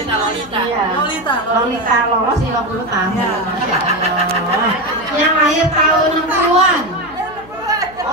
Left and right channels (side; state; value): left; noise; hum, 21 dB below the sound